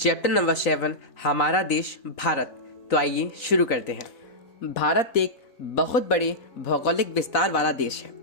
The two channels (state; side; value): late; right; 3.9 ms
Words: number 7 हमारा देश भारत। तो आइए शुरू करते हैं। भारत एक बहुत बड़े भौगोलिक विस्तार वाला देश है।